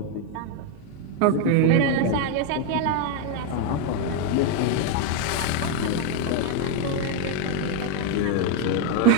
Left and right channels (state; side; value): different; both; correlation 0.01